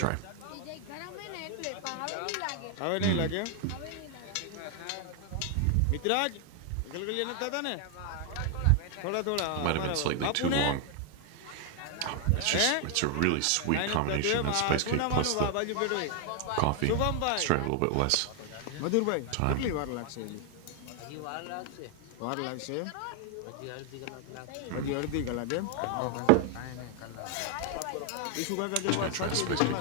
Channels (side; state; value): both; different; correlation 0.00